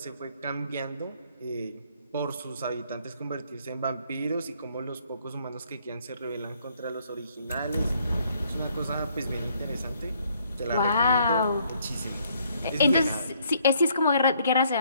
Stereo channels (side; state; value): both; inverted; correlation -0.67